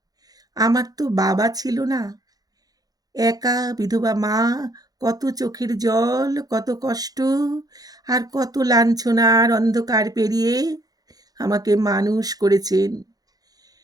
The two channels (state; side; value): late; left; 0.18 ms